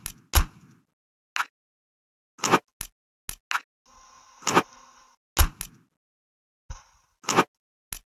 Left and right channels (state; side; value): identical; both; correlation 1.00